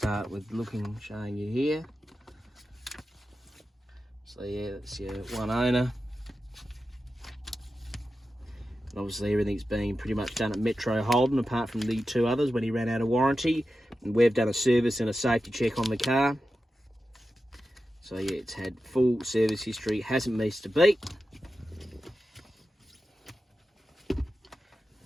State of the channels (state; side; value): normal; both; correlation 0.91